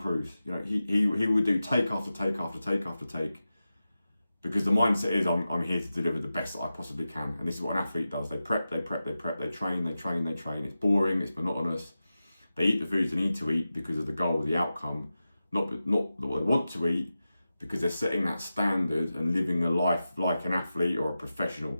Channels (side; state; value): both; inverted; correlation -0.93